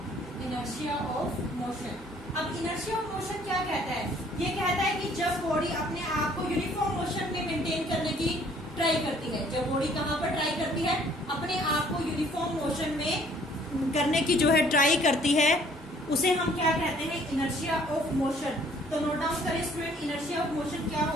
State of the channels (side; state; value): both; normal; correlation 0.59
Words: inertia of motion. अब इनर्शिया ऑफ मोशन क्या कहता है? ये कहता है कि जब बॉडी अपने आप को यूनिफॉर्म मोशन में मेंटेन करने की ट्राई करती है, जब बॉडी कहां पर ट्राई करती है? अपने आप को यूनिफॉर्म मोशन में करने की जो है ट्राई करती है, उसे हम क्या कहते हैं? Inertia of motion. तो नोट डाउन करें स्टूडेंट, इनर्शिया ऑफ मोशन क्या